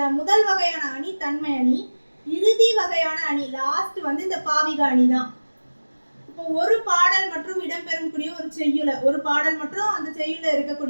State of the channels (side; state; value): both; inverted; correlation -1.00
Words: முதல் வகையான அணி தன்மை அணி, இறுதி வகையான அணி லாஸ்ட் இந்த பாவிக அணி தான். இப்போ ஒரு பாடல் மற்றும் இடம்பெறக்கூடிய ஒரு செய்யுள, ஒரு பாடல் மற்றும் அந்த செய்யுள்ள